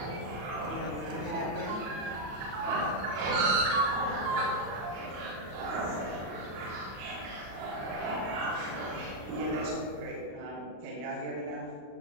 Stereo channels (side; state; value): left; late; 37 ms